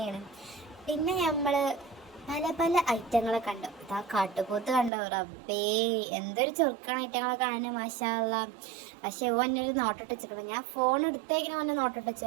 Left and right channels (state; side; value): drops out; left; at 4.9 s